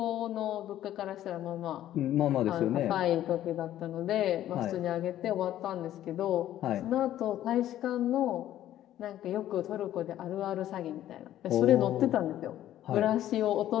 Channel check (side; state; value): right; quieter; 12.6 dB